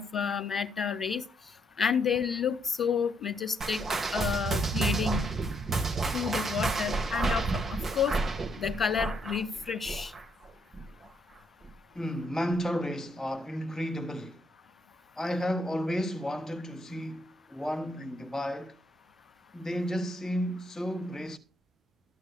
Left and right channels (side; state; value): both; normal; correlation 0.75